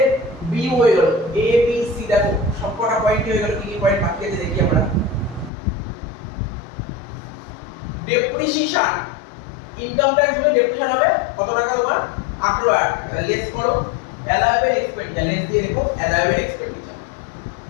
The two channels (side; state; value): right; drops out; at 5.5 s